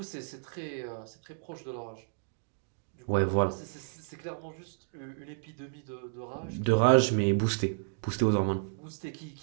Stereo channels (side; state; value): left; silent; digital silence